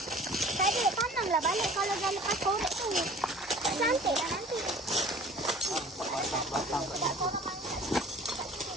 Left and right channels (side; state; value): both; normal; correlation 0.46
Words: Balik kalau dah lepas korek tu. Cantik dah nanti.